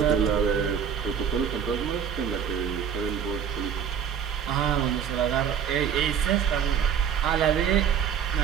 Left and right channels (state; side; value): quieter; left; 7.9 dB